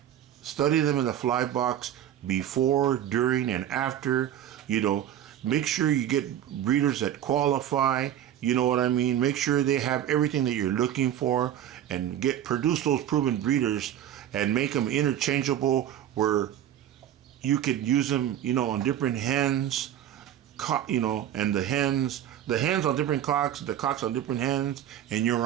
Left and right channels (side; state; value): left; quieter; 10.9 dB